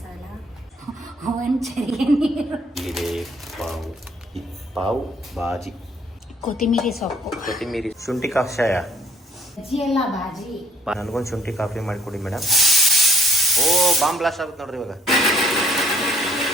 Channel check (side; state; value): both; normal; correlation 0.61